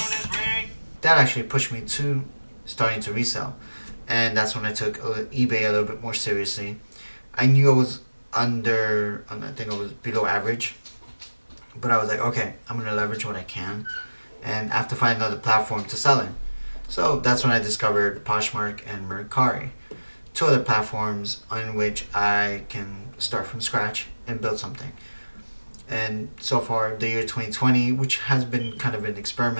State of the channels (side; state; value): both; inverted; correlation -1.00